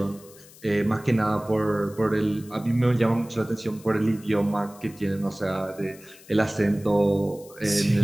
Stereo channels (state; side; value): noise; left; hiss, 22 dB below the sound